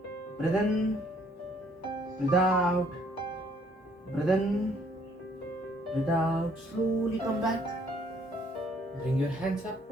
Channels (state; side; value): normal; both; correlation 0.64